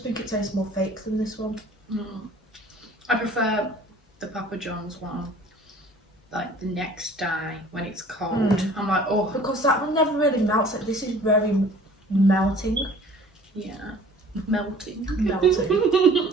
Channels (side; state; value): both; normal; correlation 0.49